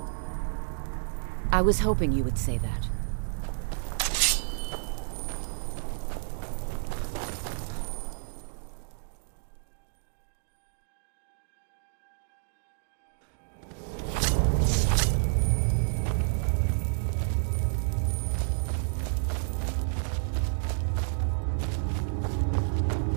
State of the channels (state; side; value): silent; left; digital silence